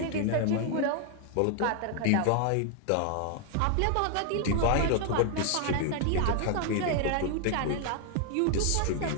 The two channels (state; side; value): different; both; correlation 0.00